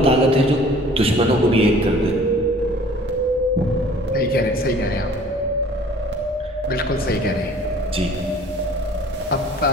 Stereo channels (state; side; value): normal; both; correlation 0.50